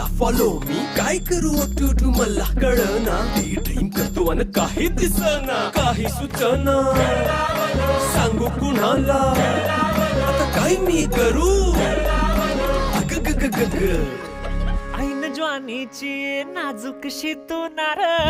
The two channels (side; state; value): both; identical; correlation 1.00